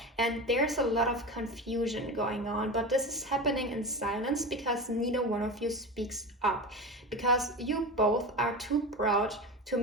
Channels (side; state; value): both; normal; correlation 0.26